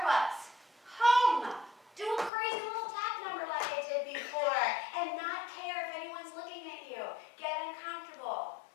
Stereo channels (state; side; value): drops out; right; at 2.3 s